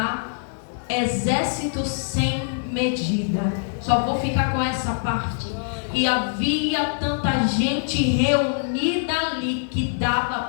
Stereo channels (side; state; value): right; silent; digital silence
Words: exército sem medida. Só vou ficar com essa parte. E havia tanta gente reunida ali, que